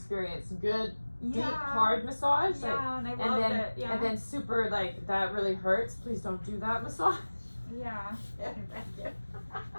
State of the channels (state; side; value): inverted; both; correlation -1.00